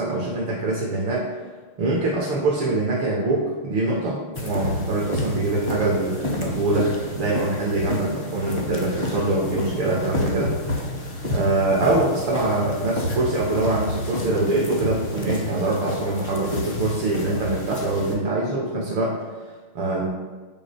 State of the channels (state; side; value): late; left; 6.5 ms